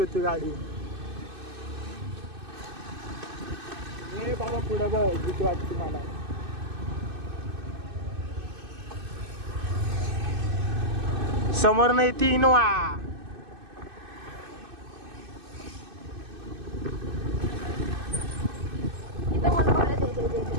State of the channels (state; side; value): late; left; 2.6 ms